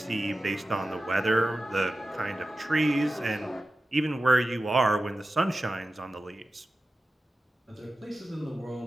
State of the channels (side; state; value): both; normal; correlation 0.94